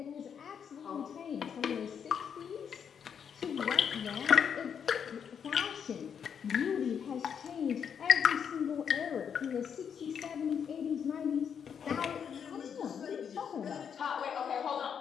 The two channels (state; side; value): quieter; right; 7.5 dB